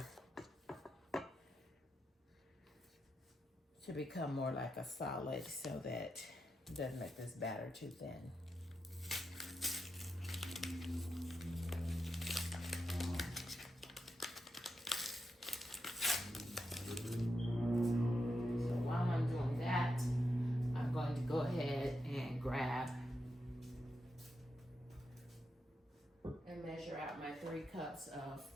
to become more like a solid so that it doesn't make this batter too thin. So while I'm doing that, I'm going to go ahead and grab and measure out my 3 cups of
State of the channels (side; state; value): both; normal; correlation 0.86